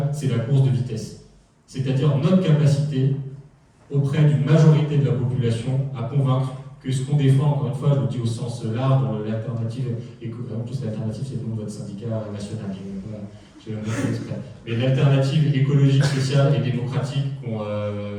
c'est la course de vitesse. C'est-à-dire notre capacité auprès d'une majorité de la population à convaincre que ce qu'on défend, encore une fois, je le dis au sens large, dans l'alternative, en plus l'alternative c'est le nom de votre syndicat national, j'ai même pas fait exprès. Mais l'alternative écologique, sociale et démocratique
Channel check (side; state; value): both; identical; correlation 1.00